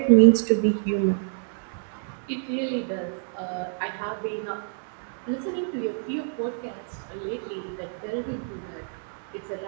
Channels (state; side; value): silent; left; 60 dB below the other